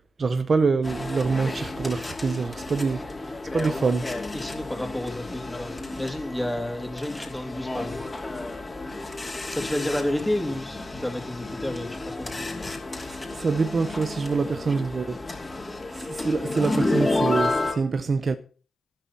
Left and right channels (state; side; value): normal; both; correlation 0.92